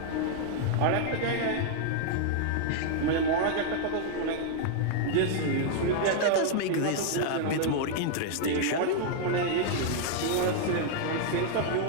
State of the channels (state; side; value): different; both; correlation -0.01